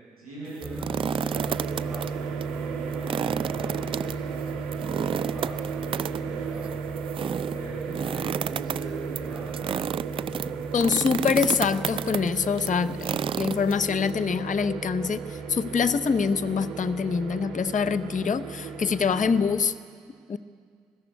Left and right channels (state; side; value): normal; both; correlation 0.61